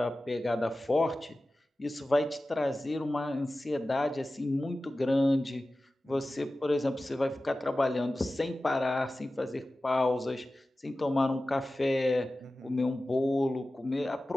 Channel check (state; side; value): normal; both; correlation 0.95